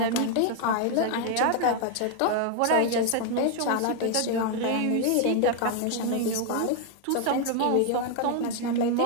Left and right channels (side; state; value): both; different; correlation 0.00